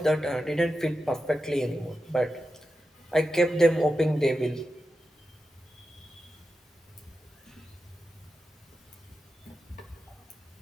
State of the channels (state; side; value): normal; both; correlation 0.91